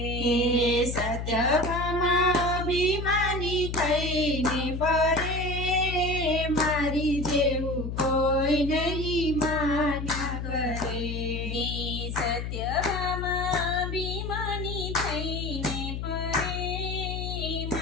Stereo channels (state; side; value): noise; left; hum, 4 dB below the sound